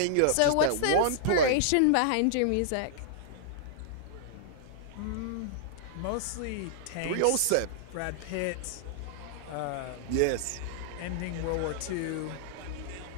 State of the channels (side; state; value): both; different; correlation -0.01